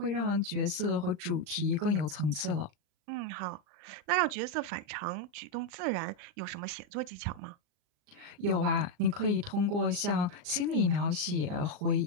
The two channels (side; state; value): left; late; 39 ms